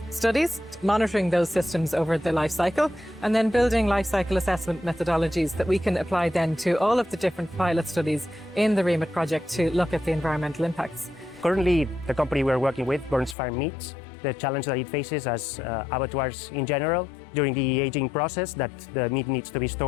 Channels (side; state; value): right; drops out; at 13.4 s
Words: studies, monitoring those systems over the life cycle, and then building life cycle assessment methodologies that we can apply then to all of the different pilot studies in the REAMIT project to look at the environmental impacts. Currently, the company we're working with, Burns Farm Meats, the challenge that it faces as abattoirs in general, during the aging process, that the meat needs to be